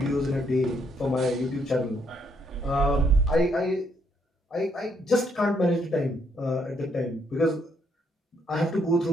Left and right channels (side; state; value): both; normal; correlation 0.72